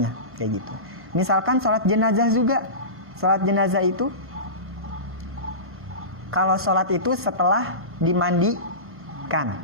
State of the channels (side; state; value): left; late; 1.5 ms